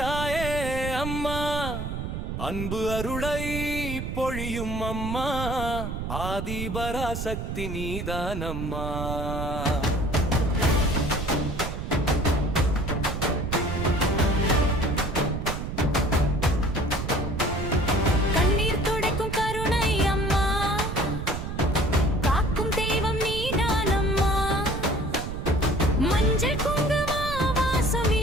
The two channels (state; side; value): noise; right; rumble, 5 dB below the sound